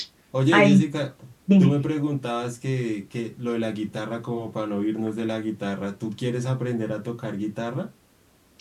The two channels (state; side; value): identical; both; correlation 1.00